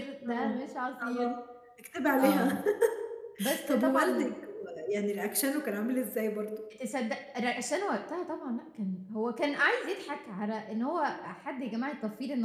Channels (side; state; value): both; identical; correlation 1.00